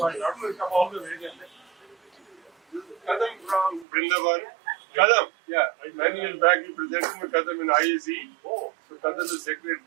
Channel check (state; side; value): drops out; left; at 3.9 s